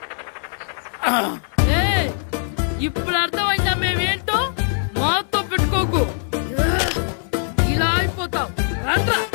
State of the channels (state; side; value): silent; right; digital silence